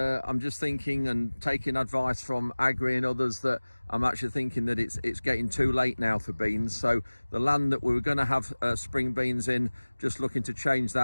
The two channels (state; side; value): inverted; both; correlation -1.00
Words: just thinking and taking advice from Agri and others that I'm actually thinking that it's getting too late now for beans. So the land that we were going to have spring beans in, just looking to change